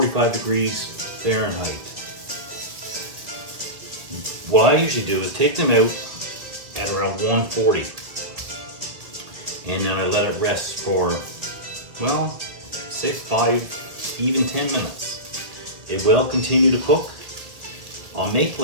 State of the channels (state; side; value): late; left; 1.9 ms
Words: degrees Fahrenheit. What I usually do is take them out at around 140. And then I let it rest for, well, say 5, even 10 minutes. It will continue to cook. I'll make